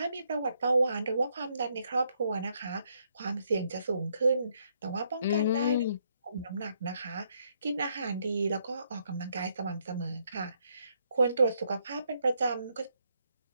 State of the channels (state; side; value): inverted; both; correlation -0.74